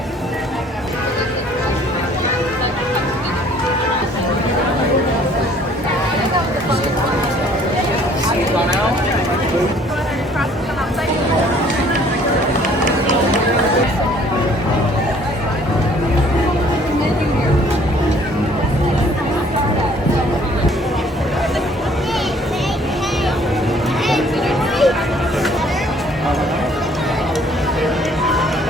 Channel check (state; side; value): normal; both; correlation 0.58